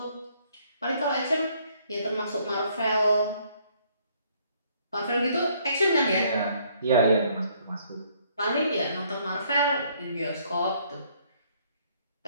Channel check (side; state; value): both; inverted; correlation -0.66